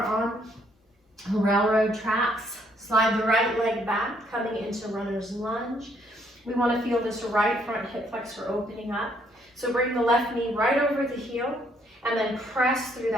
on railroad tracks. Slide the right leg back, coming into runner's lunge. We want to feel this right front hip flexor opening up. So bring the left knee right over the heel, and then press through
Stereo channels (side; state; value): both; normal; correlation 0.69